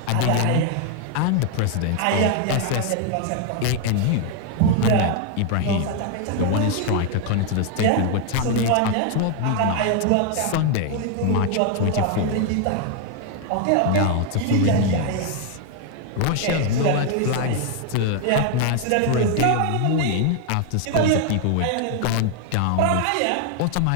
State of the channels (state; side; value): different; both; correlation 0.00